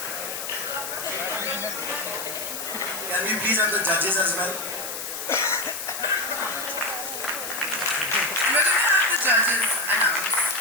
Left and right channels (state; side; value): noise; left; hiss, 6 dB below the sound